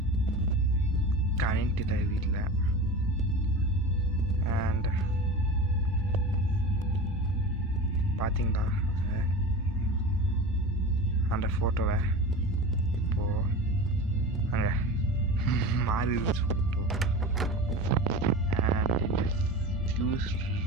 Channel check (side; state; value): both; normal; correlation 0.31